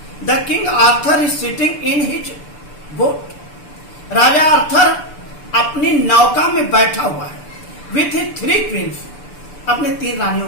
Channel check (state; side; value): late; right; 6.8 ms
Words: the King Arthur is sitting in his boat, राजा आर्थर अपनी नौका में बैठा हुआ है, विथ हिज 3 क्वींस, अपने 3 रानियों